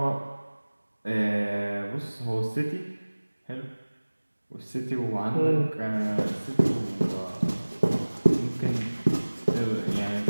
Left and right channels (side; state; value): both; inverted; correlation -1.00